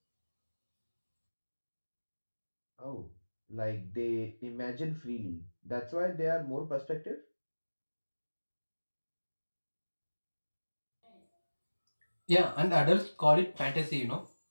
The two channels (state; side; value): inverted; both; correlation -1.00